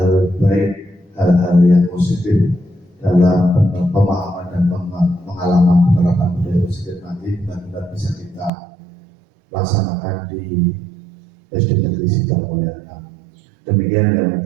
baik, hal-hal yang positif dalam pemahaman dan pengalaman penerapan budaya positif nanti benar-benar bisa kita laksanakan di SD Negeri Sidomulyo. Demikian yang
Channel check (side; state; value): left; drops out; at 8.5 s